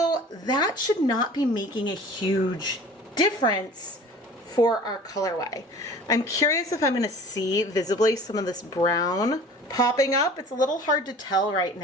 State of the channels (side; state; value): both; normal; correlation 0.44